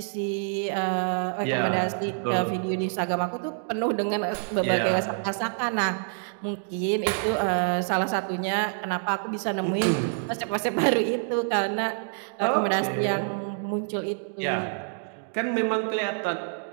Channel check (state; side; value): silent; left; 60 dB below the other